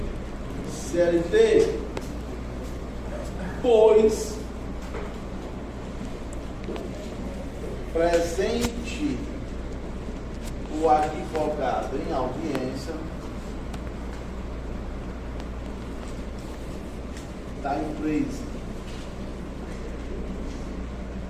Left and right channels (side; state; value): both; identical; correlation 1.00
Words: CLT, pois presente o advogado em audiência da empresa